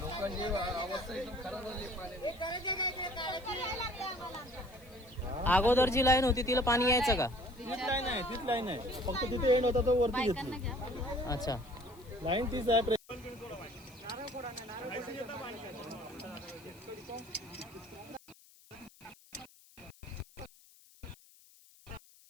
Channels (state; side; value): noise; left; hiss, 25 dB below the sound